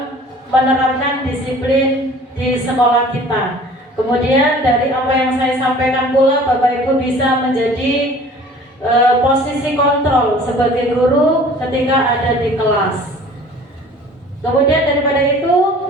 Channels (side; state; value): both; normal; correlation 0.48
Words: menerapkan disiplin di sekolah kita. Kemudian dari apa yang saya sampaikan pula Bapak Ibu bisa menjadi posisi kontrol sebagai guru ketika ada di kelas. Kemudian daripada itu